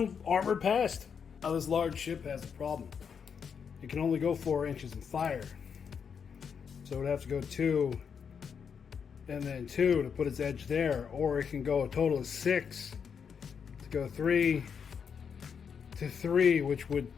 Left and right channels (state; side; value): quieter; right; 6.8 dB